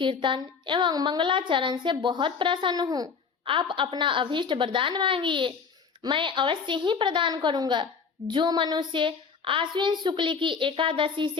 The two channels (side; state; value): right; quieter; 5.7 dB